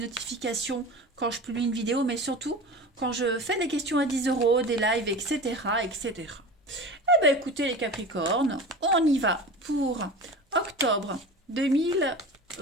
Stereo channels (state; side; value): normal; both; correlation 0.33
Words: quand je publie une vidéo, mais surtout quand je fais des questions à 10 euros, des lives, etc. etc. Eh bien, écoutez, les Capricornes, on y va pour octobre